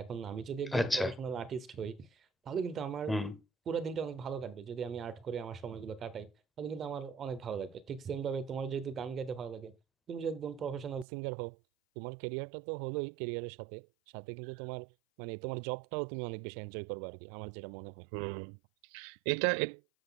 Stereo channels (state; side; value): drops out; left; at 11.1 s